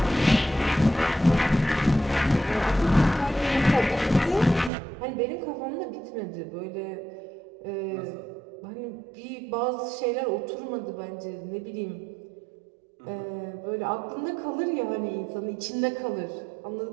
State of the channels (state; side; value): drops out; left; at 4.7 s